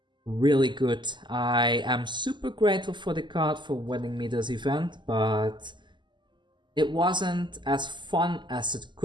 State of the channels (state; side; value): late; left; 0.22 ms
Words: really good. I am super grateful for the card for winning me this event, but it wasn't as fun as it